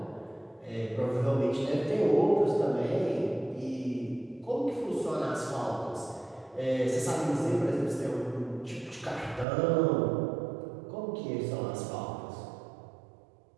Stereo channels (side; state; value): left; drops out; at 9.5 s